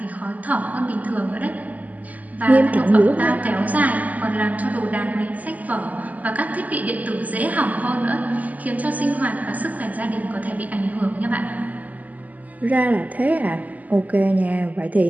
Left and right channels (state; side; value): late; left; 0.078 ms